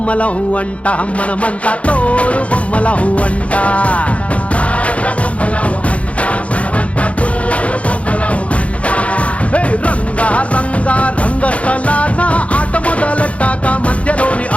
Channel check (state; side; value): late; right; 0.064 ms